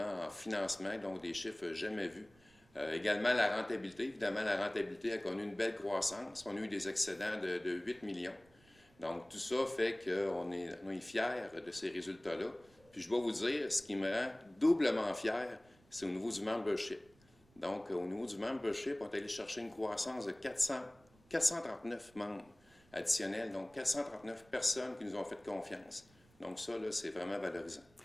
en financement, donc des chiffres jamais vus. Également, la rentabilité. Évidemment, la rentabilité a connu une belle croissance. On a eu des excédents de 8 millions. Donc, tout ça fait qu'on est fiers de ces résultats-là. Puis, je dois vous dire, ce qui me rend doublement fier, c'est au niveau du membership. Donc, au niveau du membership, on est allé chercher une croissance de 439 membres additionnels, donc 439 personnes qui nous ont fait confiance. Donc, ça, là, c'est vraiment valorisant.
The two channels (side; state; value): right; noise; rumble, 30 dB below the sound